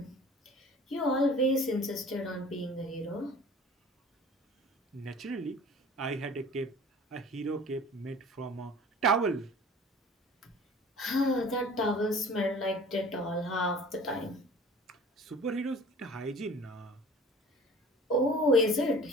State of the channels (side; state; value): both; normal; correlation 0.45